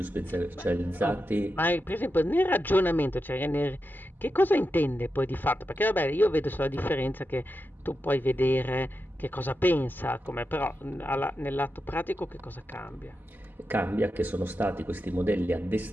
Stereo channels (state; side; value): normal; both; correlation 0.89